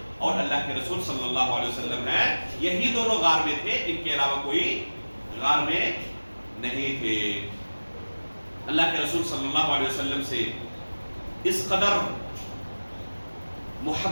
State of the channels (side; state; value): both; inverted; correlation -1.00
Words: اور اللہ کے رسول صلی اللہ علیہ وسلم ہیں. یہی دونوں غار میں تھے، ان کے علاوہ کوئی غار میں نہیں تھے. اللہ کے رسول صلی اللہ علیہ وسلم سے اس قدر